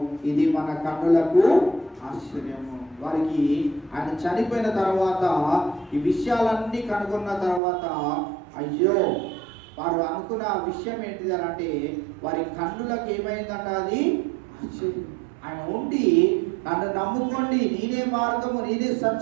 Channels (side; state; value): left; drops out; at 7.6 s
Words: ఇది మన కన్నులకు ఆశ్చర్యము. వారికి ఆయన చనిపోయిన తర్వాత ఈ విషయాలన్నీ కనుగొన్న తర్వాత, అయ్యో వారు అనుకున్న విషయం ఏంటిది అని అంటే వారి కన్నులకు ఏమైందంట, అది ఆశ్చర్యం. ఆయన ఉండి నన్ను నమ్ముకోండి, నేనే మార్గము, నేనే